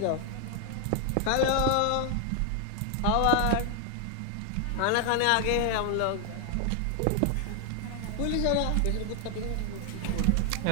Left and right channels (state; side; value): different; both; correlation 0.00